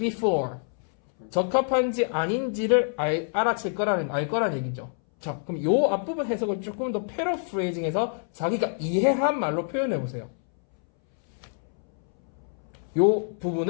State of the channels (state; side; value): silent; right; 61 dB below the other